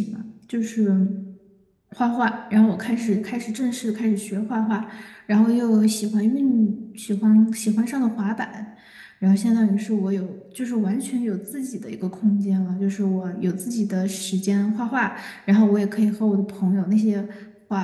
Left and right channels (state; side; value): identical; both; correlation 1.00